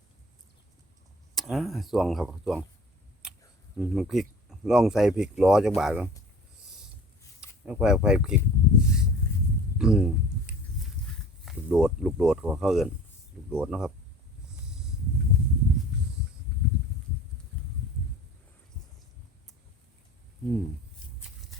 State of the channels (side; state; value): both; normal; correlation 0.44